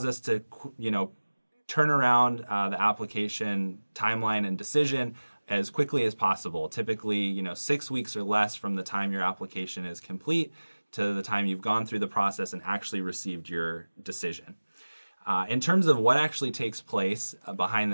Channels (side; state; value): both; inverted; correlation -1.00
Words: us to, turn around the application timeline and decision as quickly as possible. Typically, 6 weeks or less from the time your application is complete to the time you've gone through the process and actually received your decision. In terms of what actually takes place behind